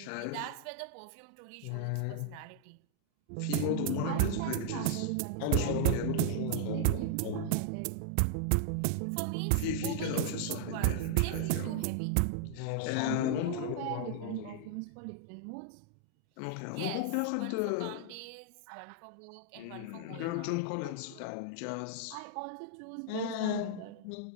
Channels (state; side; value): different; both; correlation -0.01